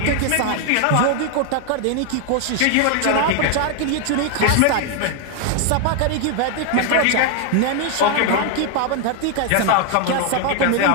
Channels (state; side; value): different; both; correlation 0.00